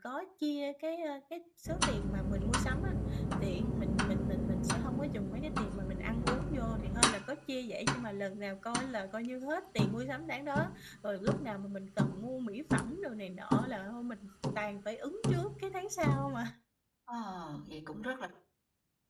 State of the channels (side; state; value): both; identical; correlation 1.00